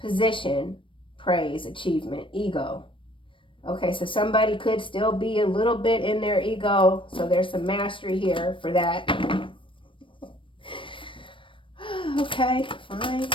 Position, praise, achievement, ego. Okay, so somebody could still be a little bit in their ego. So there's some mastery here for that. Okay, fine.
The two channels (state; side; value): late; right; 0.25 ms